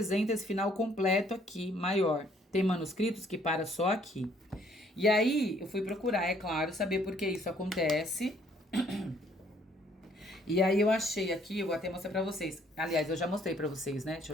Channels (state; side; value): normal; both; correlation 0.63